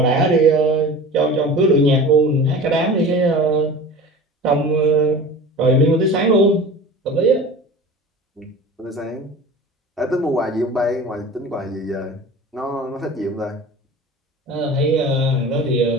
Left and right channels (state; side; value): normal; both; correlation 0.37